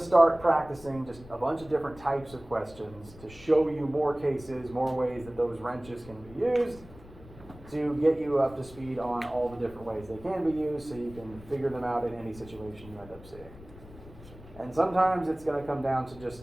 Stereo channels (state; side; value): noise; left; rumble, 19 dB below the sound